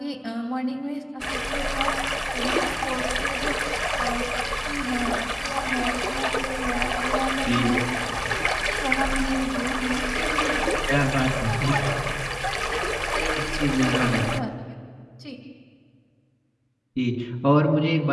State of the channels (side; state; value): both; identical; correlation 1.00